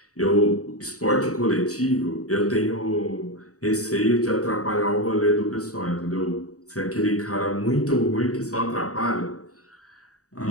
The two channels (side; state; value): right; late; 0.66 ms